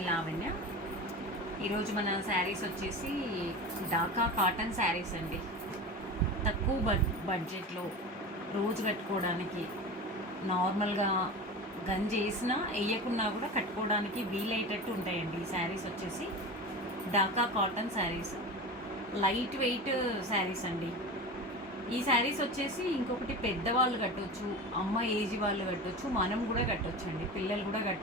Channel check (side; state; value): both; normal; correlation 0.29